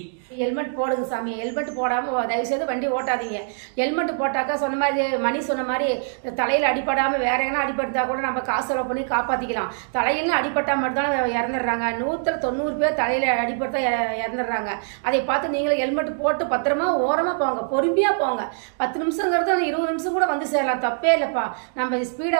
ஹெல்மெட் போடுங்க சாமி. ஹெல்மெட் போடாமல் தயவுசெய்து வண்டி ஓட்டாதீங்க. ஹெல்மெட் போட்டாக்கா சொன்ன மாதிரி மணி சொன்ன மாதிரி தலையில் அடிப்படாமல் வேற எங்கன்னா அடிபட்டா கூட நம்ம காசு செலவு பண்ணி காப்பாற்றிக்கலாம். தலையிலும் அடிபட்டால் மட்டும் தான் இறந்துடுறாங்க. 190 பேர் தலையில் அடிபட்டா இறந்துடுறாங்க. அதை பார்த்து நீங்களும் ஹெல்மெட் போட்டு பத்திரமா ஓரமாக போங்க, பொறுமையாக போங்க. 10 நிமிஷங்கிறது 20 நிமிஷம் கூட சேரலாம், தப்பே இல்லைப்பா. நம்ம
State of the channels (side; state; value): left; silent; digital silence